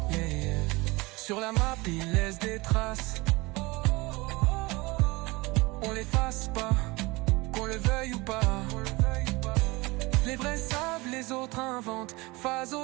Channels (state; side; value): quieter; left; 23.3 dB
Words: Yeah, yeah. Sur la map il laisse des traces, on l'efface pas, qu'on le veuille ou pas. Les vrais savent, les autres inventent.